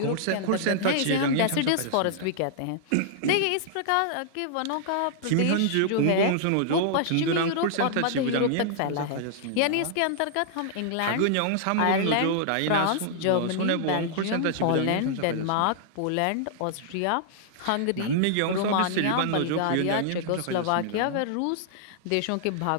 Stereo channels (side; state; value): both; different; correlation -0.01